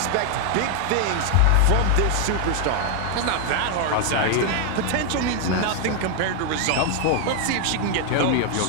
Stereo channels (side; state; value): both; different; correlation 0.00